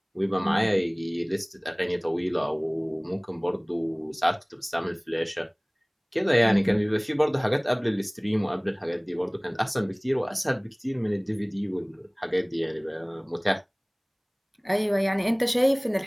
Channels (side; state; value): both; identical; correlation 1.00